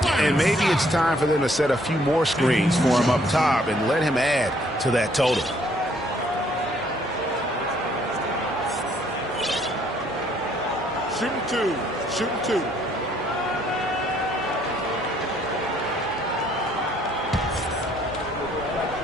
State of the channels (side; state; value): both; normal; correlation 0.65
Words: And maybe it's time for them to set a few more screens for him up top and let him add to that total. Shooting 2. Shooting 2.